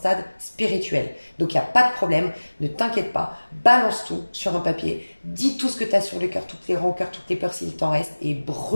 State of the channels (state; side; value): inverted; both; correlation -1.00